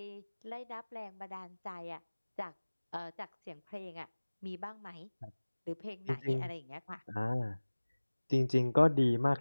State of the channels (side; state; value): both; inverted; correlation -1.00